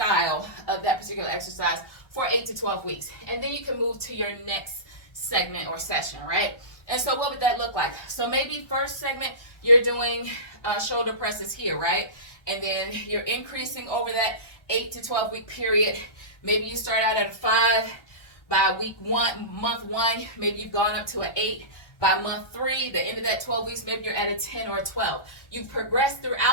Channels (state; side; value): late; right; 1.3 ms